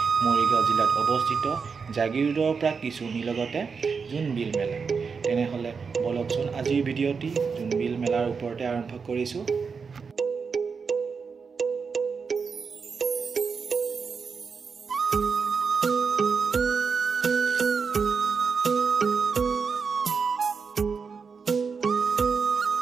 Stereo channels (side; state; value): left; quieter; 5.5 dB